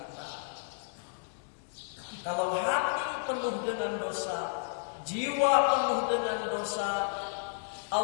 Kalau hati penuh dengan dosa, jiwa penuh dengan dosa,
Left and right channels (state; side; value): silent; right; digital silence